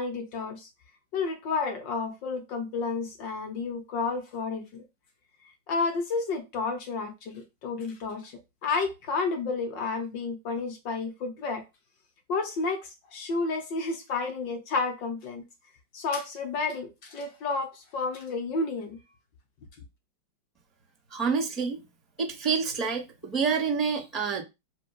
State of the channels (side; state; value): right; late; 4.4 ms